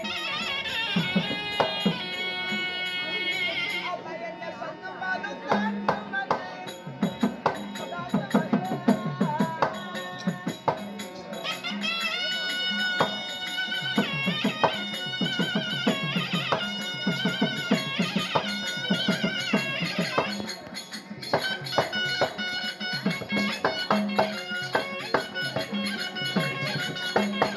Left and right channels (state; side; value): identical; both; correlation 1.00